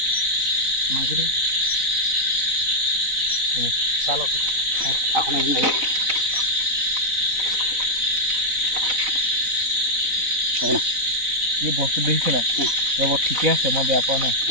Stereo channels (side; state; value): left; late; 4.0 ms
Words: মাৰিছে দেই চাহ লওক এখন এদিন লাগি হ'ব না এই বস্তু দেখিছে নাই ৰ'ব ঠিকে আছে মই বেয়া পোৱা নাই